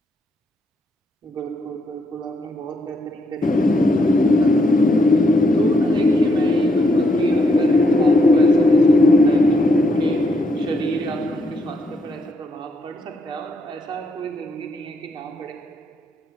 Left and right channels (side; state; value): both; normal; correlation 0.75